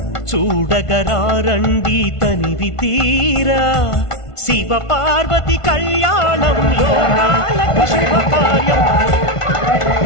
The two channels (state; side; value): late; right; 1.5 ms